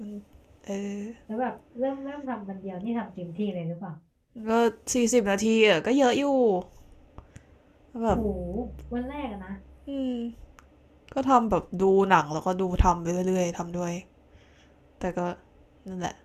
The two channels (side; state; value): both; identical; correlation 1.00